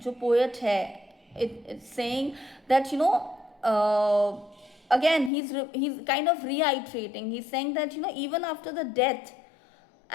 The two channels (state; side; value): drops out; right; at 5.3 s